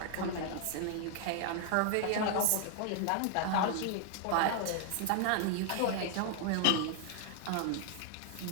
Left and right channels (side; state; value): both; different; correlation 0.00